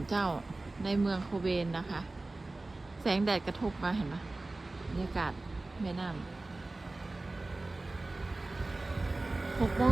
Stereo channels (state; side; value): quieter; left; 3.1 dB